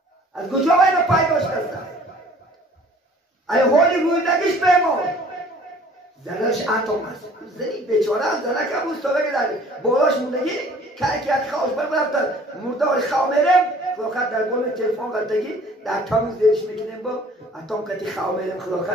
از کجا باید پیدا شده؟ ای حالی روی دگیش بمون زنش اتم است. زنی بیچاره هم زنه که بود سابقه داری بالاش موندگی که یک خواهش برفتن مردار خواه میرم خلاقت در بال تلفن قلتگی در تامیز دیرش میکنیم با اتم کتی خواه میرم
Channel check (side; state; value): both; normal; correlation 0.52